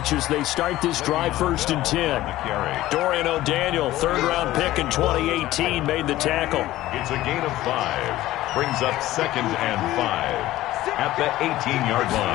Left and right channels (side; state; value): right; quieter; 15.7 dB